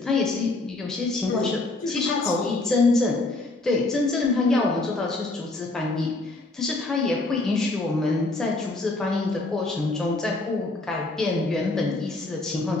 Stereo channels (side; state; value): right; quieter; 3.0 dB